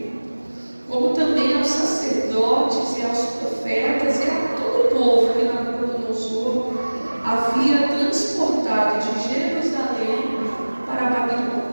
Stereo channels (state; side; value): inverted; both; correlation -1.00